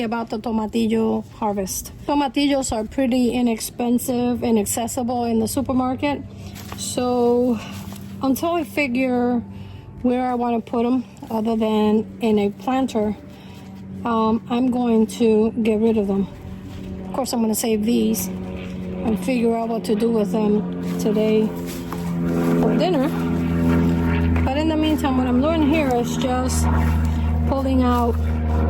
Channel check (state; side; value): identical; both; correlation 1.00